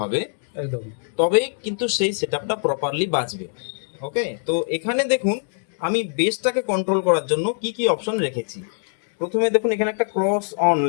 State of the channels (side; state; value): right; silent; digital silence